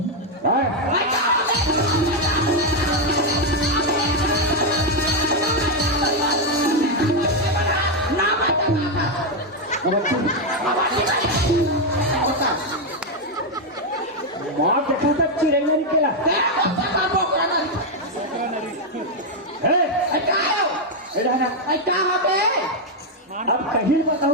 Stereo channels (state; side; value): normal; both; correlation 0.03